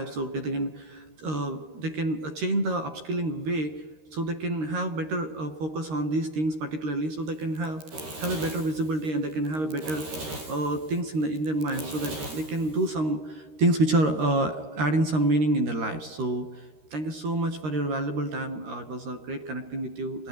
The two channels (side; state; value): left; late; 13 ms